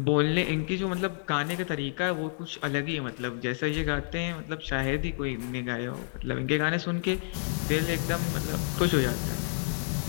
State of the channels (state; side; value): silent; right; digital silence